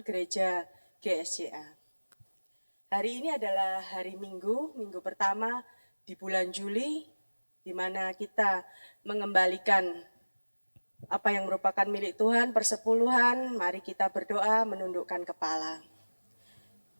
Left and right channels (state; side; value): inverted; both; correlation -1.00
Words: gereja GSCA. Hari ini adalah hari Minggu pertama di bulan Juli, di mana kita mengembalikan apa yang merupakan milik Tuhan, persepuluhan. Mari kita berdoa menundukkan kepala.